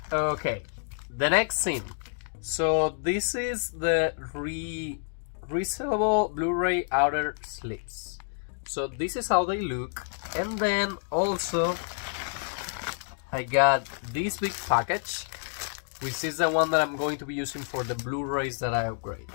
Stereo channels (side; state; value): right; silent; digital silence